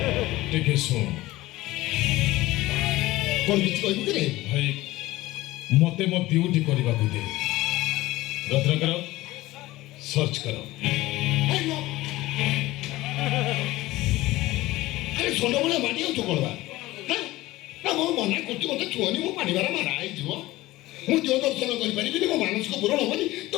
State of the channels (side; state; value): right; quieter; 18.0 dB